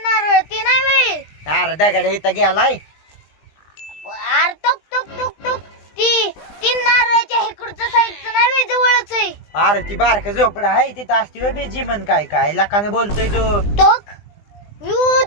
नारळ ती नाही वे. अरे दगड इथं गेलाय. अरे टोक टोक टोक टोक ती तीन नारळाच्या इकडचं साईडचं नाही वे जवळच आहे. अरे ती बारक झोपडा आहे तिथं असती वे बिजी म्हण. काय काय लाखाने बोलतोय तू. टोक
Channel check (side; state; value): right; late; 20 ms